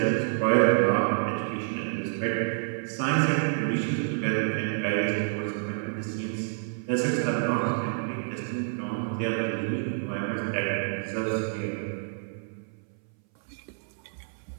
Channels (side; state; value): left; silent; 59 dB below the other